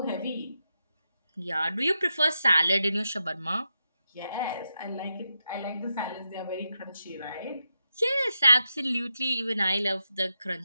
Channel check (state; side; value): inverted; both; correlation -0.87